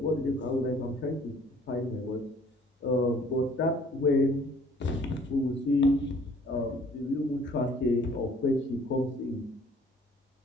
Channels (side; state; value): both; normal; correlation 0.56